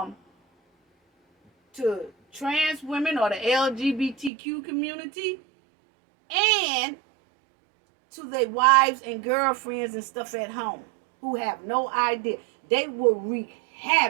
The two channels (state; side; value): drops out; left; at 4.3 s